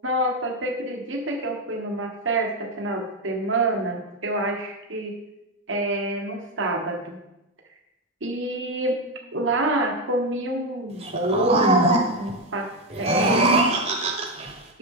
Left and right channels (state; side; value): normal; both; correlation 0.09